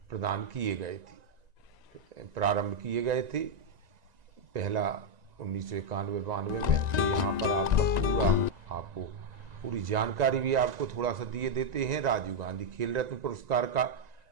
प्रदान किए गए थे, प्रारंभ किए गए थे। पहला 1991-92 में। तो यहाँ पर आपको पूरी जानकारी भी आपको थोड़ा सा दिए देते हैं। राजीव गांधी खेल रत्न पुरस्कार का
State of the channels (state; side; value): late; left; 1.9 ms